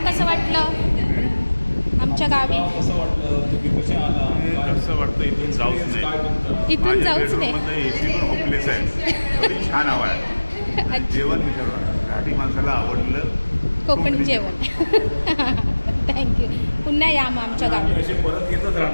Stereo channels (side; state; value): both; inverted; correlation -1.00